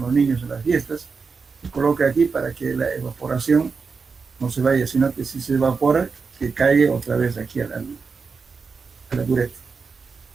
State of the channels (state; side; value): quieter; left; 5.0 dB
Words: niños en las fiestas. Se coloca aquí para que la evaporación no se vaya, sino que si se evapora, que caiga otra vez aquí a la bureta.